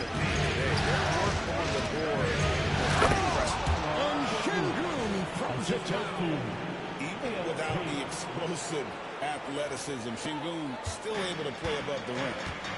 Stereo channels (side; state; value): both; identical; correlation 1.00